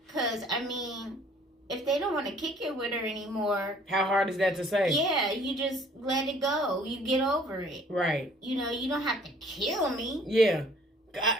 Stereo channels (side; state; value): both; normal; correlation 0.56